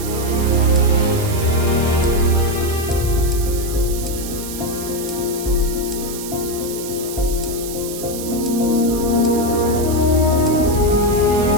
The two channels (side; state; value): right; noise; hiss, 10 dB below the sound